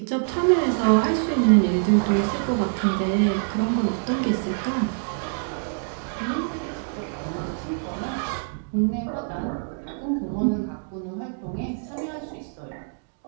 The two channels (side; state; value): left; silent; digital silence